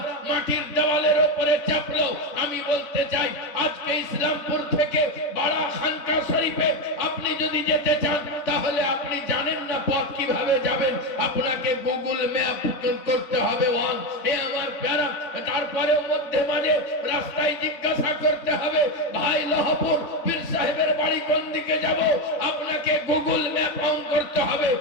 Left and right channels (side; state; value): right; late; 3.6 ms